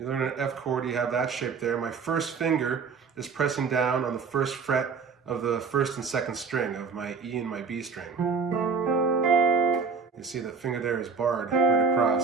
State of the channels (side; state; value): left; quieter; 5.3 dB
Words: learn an F chord, you have that shape there. My first finger is pressing down on the first fret of the first and second string of my E and my B string. You see the finger there is barred right across.